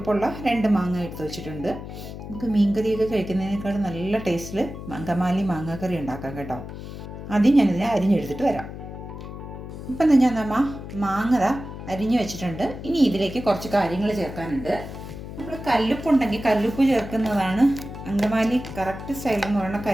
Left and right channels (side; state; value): left; noise; hum, 10 dB below the sound